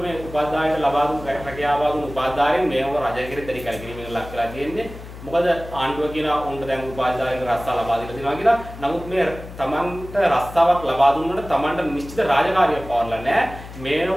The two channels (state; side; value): noise; left; hum, 14 dB below the sound